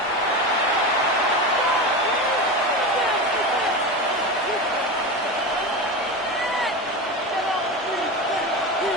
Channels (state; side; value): normal; both; correlation 0.23